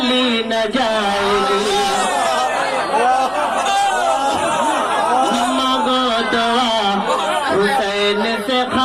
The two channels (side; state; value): left; noise; hum, 30 dB below the sound